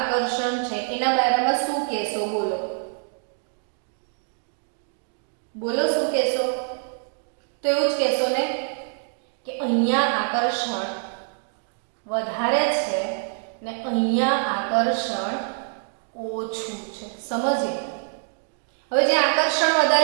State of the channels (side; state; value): left; silent; 58 dB below the other